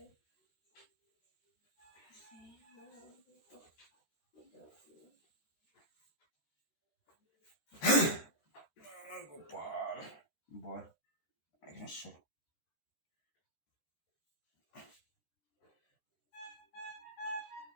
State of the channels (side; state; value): right; late; 13 ms